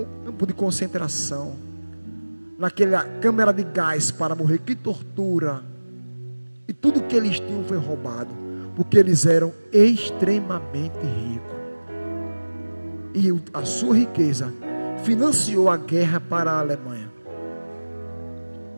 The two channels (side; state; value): both; inverted; correlation -1.00